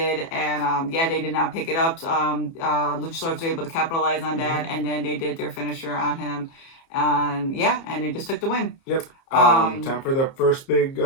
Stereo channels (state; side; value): late; right; 30 ms